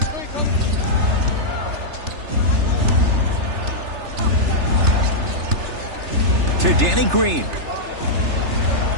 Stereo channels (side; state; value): left; late; 3.3 ms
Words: To Danny Green.